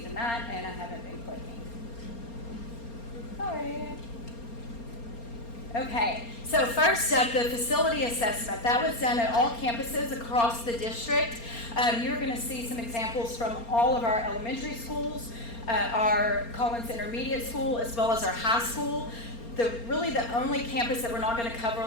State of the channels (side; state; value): right; late; 4.3 ms